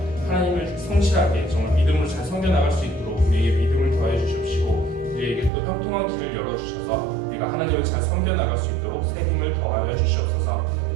하나님을 성실하게 정말 믿음으로 잘 섬겨나갈 수 있도록 우리에게 믿음을 더해 주십시고 우리에게 또 형통한 길을 열어주셔서 우리가 하나님을 잘 섬겨나갈 수 있도록 새 힘을 더하여 주시옵소서.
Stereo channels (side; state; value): left; drops out; at 5.5 s